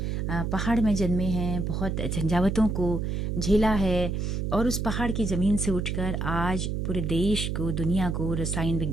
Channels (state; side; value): noise; right; hum, 1 dB below the sound